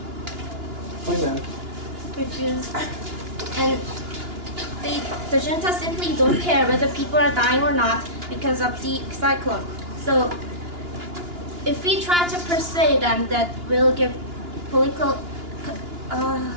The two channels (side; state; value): left; late; 2.9 ms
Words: Refuse. And the junta simply don't care whether people are dying or not because of the cyclone. So if we try to persuade them that we'll give political,